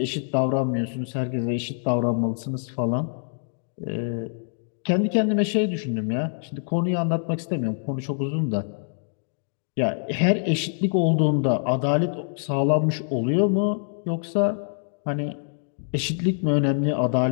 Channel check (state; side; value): silent; right; digital silence